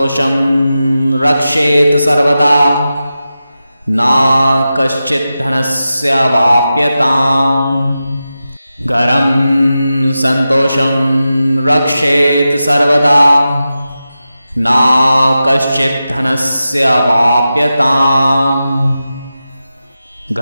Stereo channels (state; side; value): inverted; both; correlation -0.92